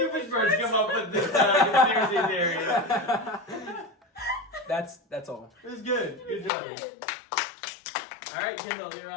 come up with this conspiracy theory. That's all. It was good. Good job. Alright, Kendall, you're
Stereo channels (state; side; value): drops out; right; at 6.5 s